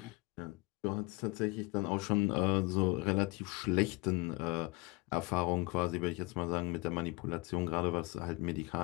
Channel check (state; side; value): quieter; right; 24.1 dB